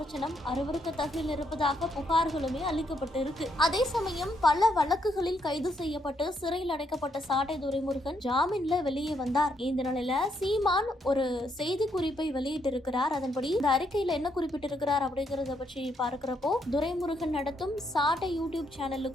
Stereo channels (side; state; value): both; normal; correlation 0.75